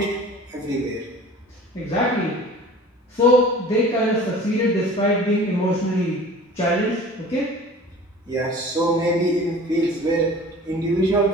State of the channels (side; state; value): both; normal; correlation 0.43